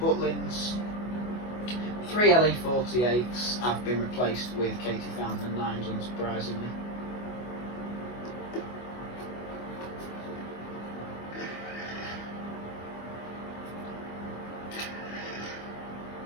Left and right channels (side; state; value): right; late; 24 ms